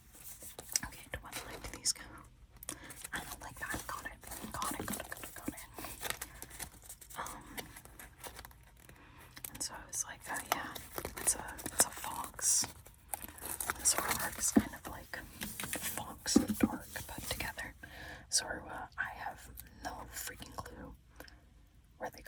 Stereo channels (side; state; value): both; identical; correlation 1.00